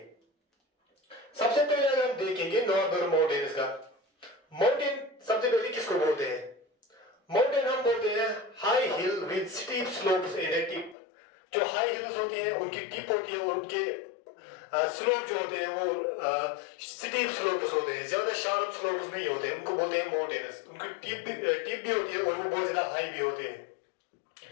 सबसे पहले अगर हम देखेंगे नॉर्दर्न माउंटेन्स का, माउंटेन सबसे पहले किसको बोलते हैं? माउंटेन हम बोलते हैं high heel with steep slopes and A tip. जो हाई हिल्स होते हैं उनकी टिप होती है और उनके स्लोप जो होते हैं वो स्टीप स्लोप्स होते हैं, ज्यादा शार्प स्लोप्स नहीं होते, उनको बोलते हैं माउंटेन्स। उनकी टिप भी होती है और वो बहुत ज्यादा हाई भी होते हैं।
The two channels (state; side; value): drops out; right; at 11.0 s